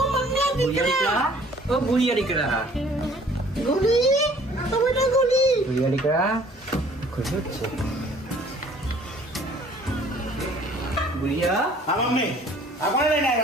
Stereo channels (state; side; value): normal; both; correlation 0.55